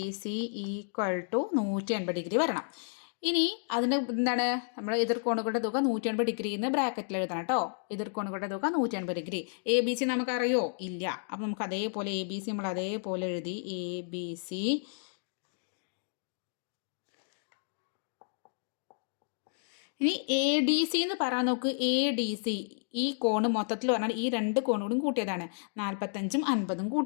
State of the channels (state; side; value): silent; right; digital silence